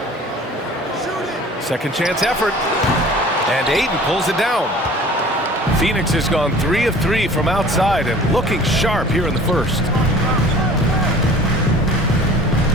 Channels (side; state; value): both; normal; correlation 0.46